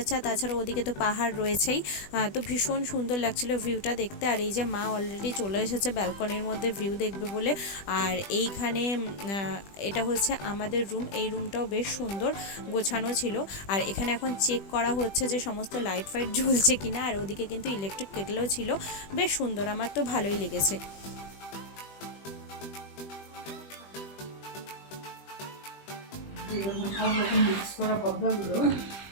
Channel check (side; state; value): right; late; 20 ms